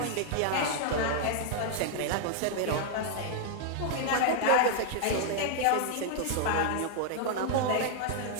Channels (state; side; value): different; both; correlation 0.00